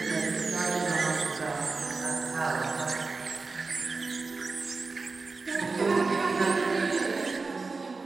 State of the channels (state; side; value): quieter; left; 4.0 dB